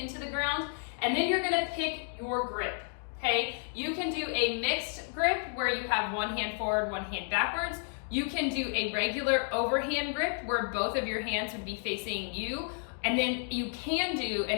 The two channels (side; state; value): right; silent; 56 dB below the other